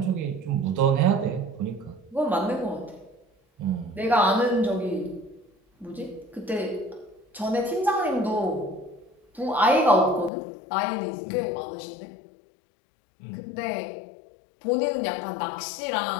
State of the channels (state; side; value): drops out; right; at 10.3 s